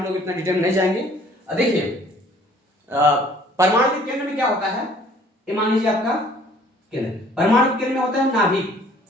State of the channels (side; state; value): both; normal; correlation 0.56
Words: लोग इतना डिटेल में नहीं जाएंगे। देखिए परमाणु के केंद्र में क्या होता है, ये मान लीजिए आपका केंद्र, परमाणु के केंद्र में होता है नाभिक,